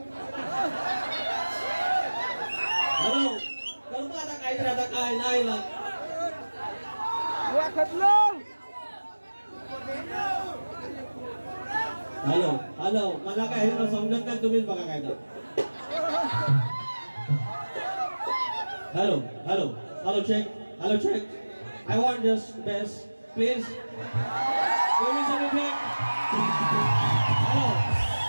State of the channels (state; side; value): inverted; both; correlation -1.00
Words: हॅलो करतो आता काहीतरी आता काय नाही ना हॅलो हॅलो मला काय हे समजत नाही तुम्हीच बघा काय तर hello hello hello check I want just best please give me some effect hello